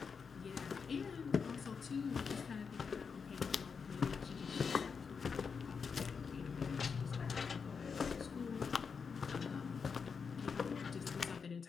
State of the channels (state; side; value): quieter; right; 5.8 dB